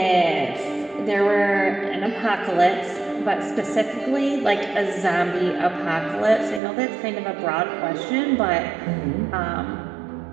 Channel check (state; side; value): drops out; left; at 6.6 s